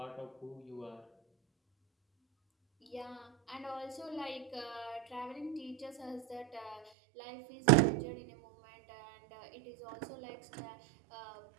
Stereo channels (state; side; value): drops out; left; at 6.9 s